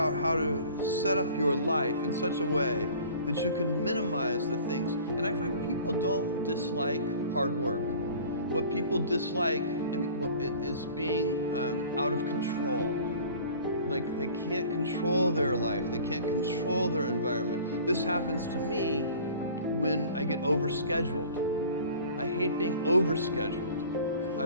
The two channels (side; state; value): both; inverted; correlation -0.46